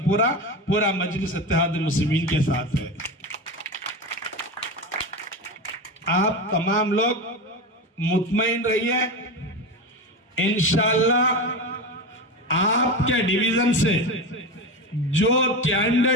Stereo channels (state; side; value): normal; both; correlation 0.21